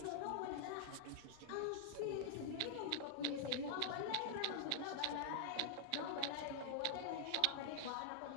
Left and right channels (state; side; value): different; both; correlation -0.01